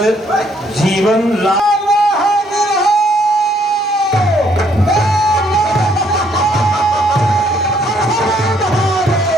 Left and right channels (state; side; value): normal; both; correlation 0.67